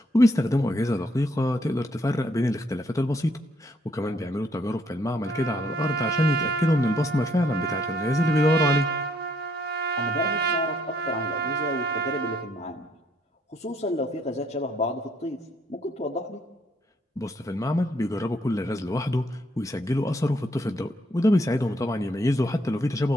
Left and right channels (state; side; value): normal; both; correlation 0.70